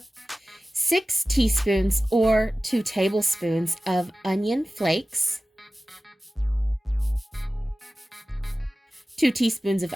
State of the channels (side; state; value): both; normal; correlation 0.96